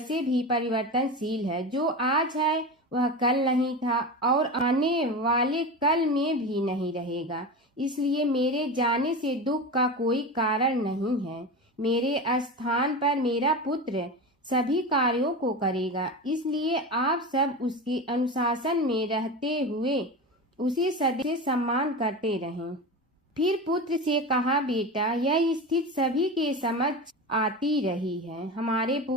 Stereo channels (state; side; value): normal; both; correlation 0.25